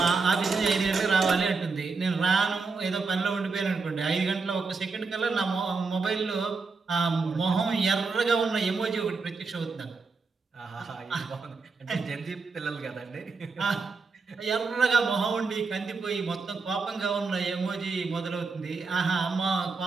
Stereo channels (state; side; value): quieter; left; 4.4 dB